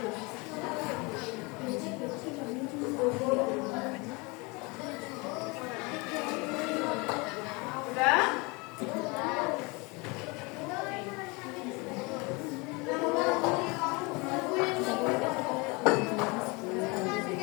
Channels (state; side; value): quieter; right; 27.4 dB